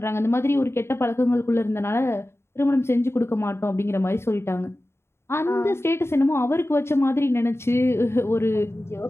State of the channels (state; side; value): late; right; 0.12 ms